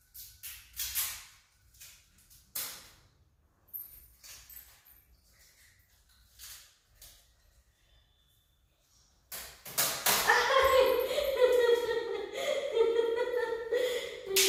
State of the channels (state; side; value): identical; both; correlation 1.00